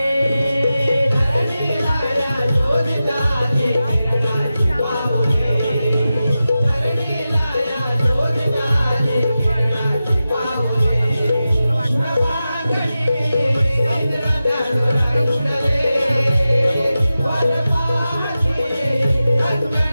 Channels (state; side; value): inverted; both; correlation -0.93